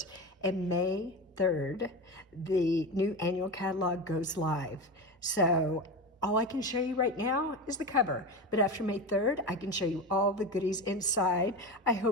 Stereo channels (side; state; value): both; normal; correlation 0.23